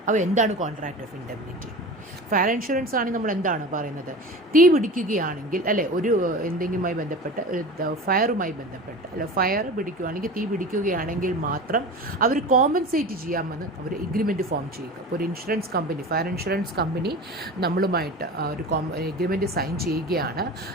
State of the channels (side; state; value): both; normal; correlation 0.33